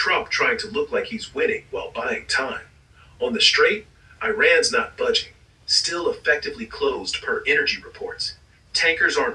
trying to look like he's winning while buying time. On the straight, Iran's not budging. Still effectively closed per energy reports. Tankers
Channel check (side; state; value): both; identical; correlation 1.00